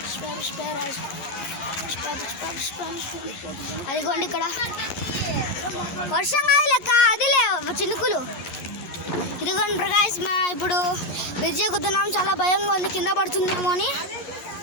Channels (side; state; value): right; late; 12 ms